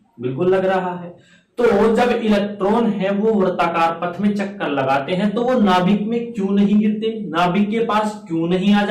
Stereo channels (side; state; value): both; identical; correlation 1.00